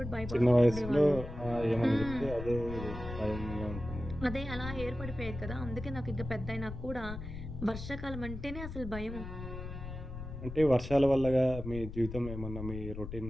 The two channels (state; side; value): noise; left; rumble, 9 dB below the sound